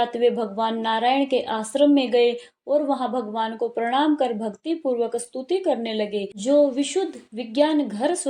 वे भगवान नारायण के आश्रम में गए और वहां भगवान को प्रणाम कर भक्ति पूर्वक स्तुति करने लगे। जो विशुद्ध विज्ञान घर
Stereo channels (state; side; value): identical; both; correlation 1.00